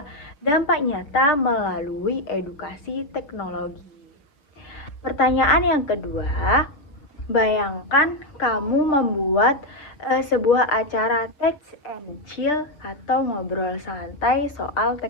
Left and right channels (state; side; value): late; right; 6.7 ms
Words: dampak nyata melalui edukasi teknologi. Pertanyaan yang kedua, bayangkan kamu membuat sebuah acara text and chill atau ngobrol santai soal